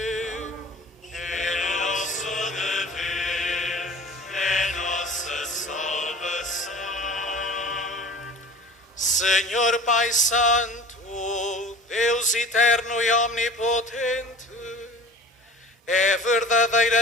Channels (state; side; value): normal; both; correlation 0.41